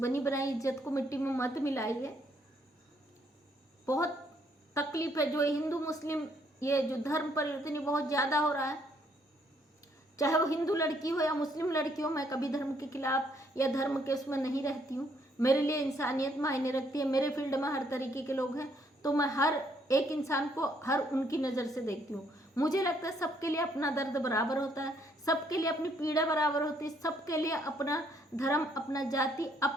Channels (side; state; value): both; normal; correlation 0.69